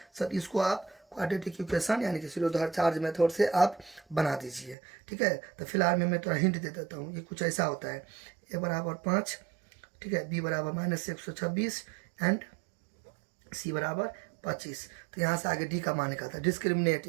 सर इसको आप क्वाड्रेटिक इक्वेशन यानी कि शिरोधार चार्ज मेथड से आप बना दीजिए, ठीक है। तो फिलहाल मैं थोड़ा हिंट दे देता हूँ, ये कुछ ऐसा होता है, A = 5, ठीक है, B = -126 एंड सी बराबर 25। तो यहाँ से आगे डी का मान निकालता है, डिस्क्रिमिनेट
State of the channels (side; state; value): left; drops out; at 4.8 s